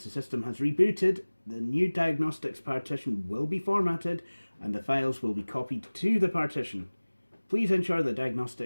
the system has rebooted, the new diagnostics partition will be formatted and the files will be copied to the partition. Please ensure the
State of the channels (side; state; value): both; inverted; correlation -1.00